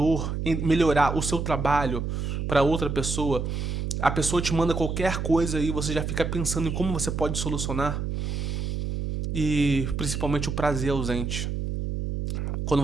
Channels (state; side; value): noise; right; hum, 2 dB below the sound